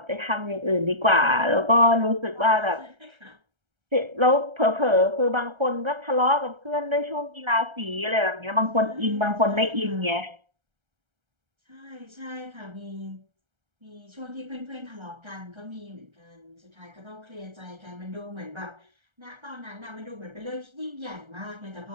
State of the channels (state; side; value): late; left; 1.3 ms